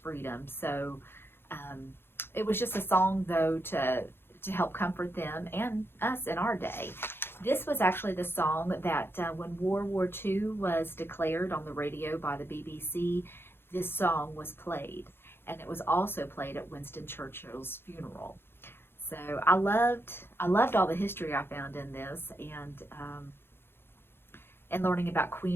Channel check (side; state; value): right; late; 0.11 ms